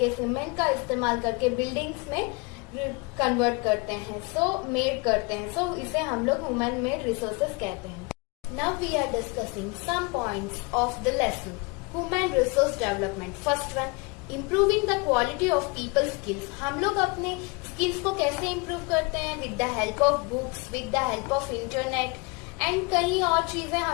cement का इस्तेमाल करके बिल्डिंग्स में कन्वर्ट करते हैं, मेड करते हैं. सो इसे हम लोग ह्यूमन मेड रिसोर्सेज कहते हैं. Now we are discussing some points of the lesson. Human resource development. First one, improving the quality of people skills. हम लोग अपने स्किल्स को कैसे इम्प्रूव करते हैं? With the help of books, with the help of internet and कई और चीजें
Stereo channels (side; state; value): right; quieter; 28.7 dB